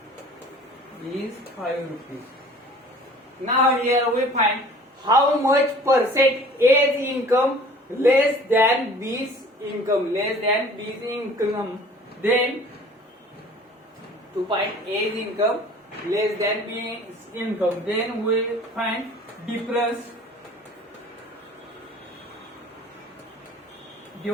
is 5 rupees. Now here we find how much percent A's income less than B's income. Then to find A's income less than B's income, then we find difference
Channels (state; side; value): normal; both; correlation 0.48